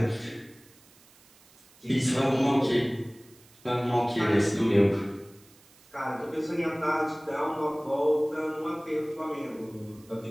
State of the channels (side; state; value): right; noise; hiss, 27 dB below the sound